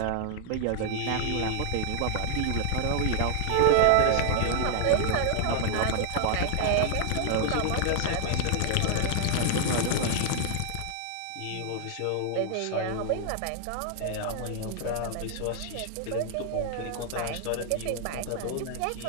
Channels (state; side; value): different; both; correlation 0.00